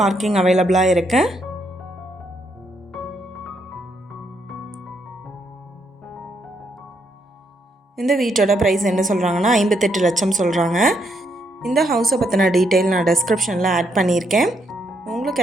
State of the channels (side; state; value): both; normal; correlation 0.76